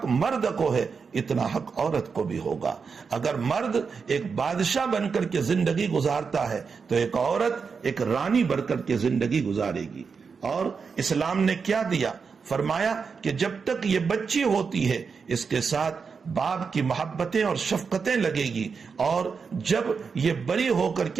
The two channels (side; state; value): left; quieter; 5.5 dB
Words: مرد کو ہے اتنا حق عورت کو بھی ہوگا۔ اگر مرد ایک بادشاہ بن کر کے زندگی گزارتا ہے تو ایک عورت ایک رانی بن کر کے زندگی گزارے گی۔ اور اسلام نے کیا دیا؟ فرمایا کہ جب تک یہ بچی ہوتی ہے اس کے ساتھ باپ کی محبتیں اور شفقتیں لگے گی، اور جب یہ بڑی ہو کر